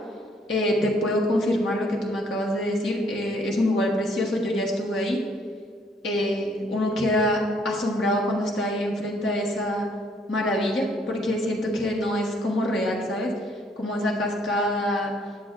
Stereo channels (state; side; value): normal; both; correlation 0.65